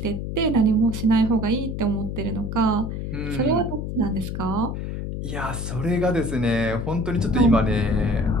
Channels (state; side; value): noise; left; hum, 5 dB below the sound